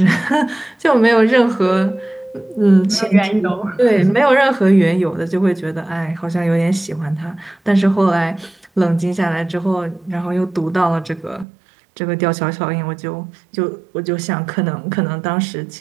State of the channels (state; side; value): drops out; left; at 11.5 s